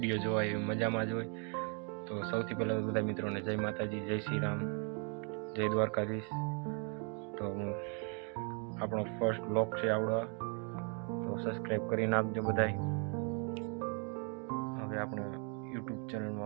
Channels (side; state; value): left; quieter; 38.1 dB